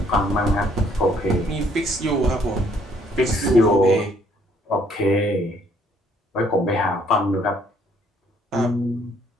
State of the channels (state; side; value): normal; both; correlation 0.65